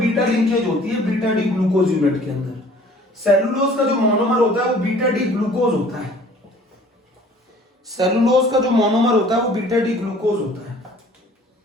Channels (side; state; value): both; normal; correlation 0.52